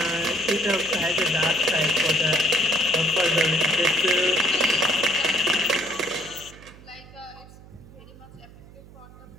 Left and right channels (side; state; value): right; noise; hum, 20 dB below the sound